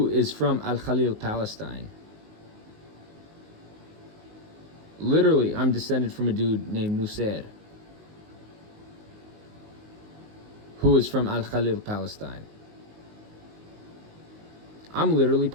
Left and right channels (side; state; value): left; late; 19 ms